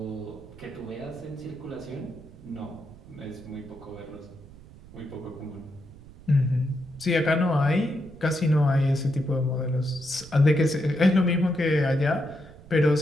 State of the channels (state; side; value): noise; right; rumble, 20 dB below the sound